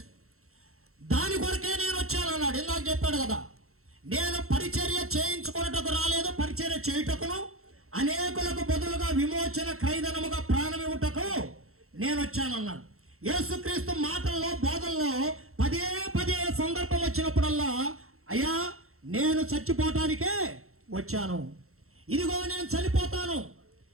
దాని కొరకే నేను వచ్చాను అన్నాడు. ఇందాక చెప్పాడు కదా, నేను పరిచర్య చేయించుకున్నటకు రాలేదు, పరిచర్య చేయుటకును అనేకులకు బదులుగా విమోచన క్రైదనముగా ప్రాణమివ్వుటకు నేను వచ్చానన్నాడు. యేసుక్రీస్తు మాటల్లో బోధనలో పదే పదే సందర్భం వచ్చినప్పుడల్లా, అయ్యా నేను చచ్చిపోవటానికే వచ్చాను, ఇదిగో నేను చనిపోతాను,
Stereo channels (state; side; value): late; left; 0.63 ms